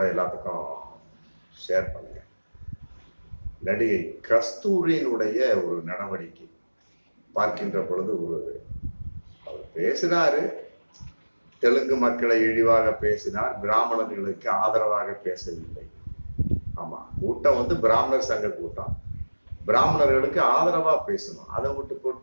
எல்லாத்துக்கும் ஷேர் பண்ணுங்கள். நடிகை கஸ்தூரியினுடைய ஒரு நடவடிக்கை பார்க்கின்ற பொழுது அவர் பேசினாரு. தெலுங்கு மக்களை இழிவாக பேசினார், பிராமணர்களுக்கு ஆதரவாக பேசவில்லை. ஆமா, கூட்டம் பிராமணர் சங்க கூட்டம், பிராமணர்களுக்கு ஆதரவா பேசணும். அதை விட்டு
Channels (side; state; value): both; inverted; correlation -1.00